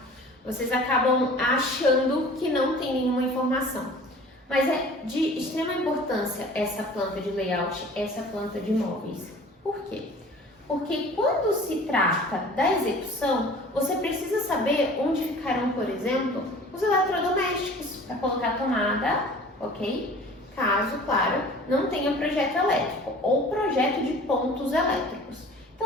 vocês acabam achando que não tem nenhuma informação. Mas é de extrema importância essa planta de layout, essa planta de móveis. Por quê? Porque quando se trata da execução, você precisa saber onde ficarão, por exemplo, os eletrodomésticos para colocar tomada, ok? Caso, claro, não tenha projeto elétrico ou projeto de pontos elétricos.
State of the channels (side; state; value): both; normal; correlation 0.45